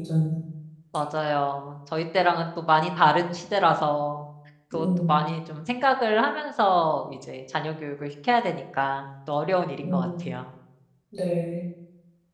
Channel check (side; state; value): both; identical; correlation 1.00